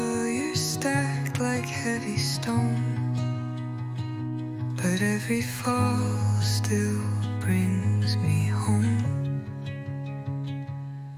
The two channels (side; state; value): both; identical; correlation 1.00